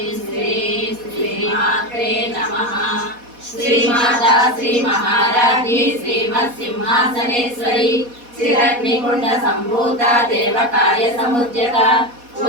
శ్రీం శ్రీమాత్రే నమః. శ్రీమాతా శ్రీ మహారాజ్ఞి శ్రీమత్ సింహాసనేశ్వరి శ్రీరగ్నికుండ సంభూత దేవకార్య సముద్యత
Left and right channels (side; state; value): left; late; 4.1 ms